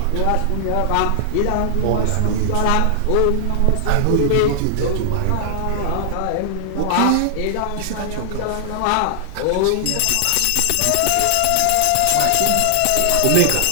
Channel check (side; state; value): both; different; correlation -0.01